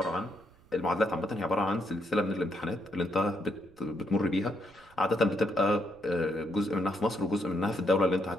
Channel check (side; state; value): right; noise; rumble, 27 dB below the sound